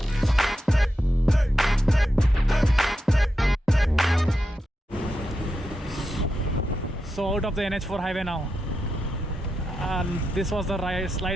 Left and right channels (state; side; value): normal; both; correlation 0.88